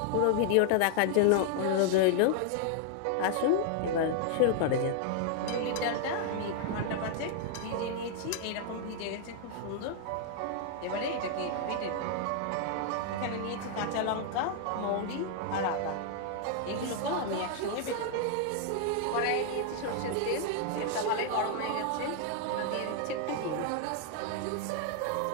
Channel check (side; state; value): both; different; correlation 0.00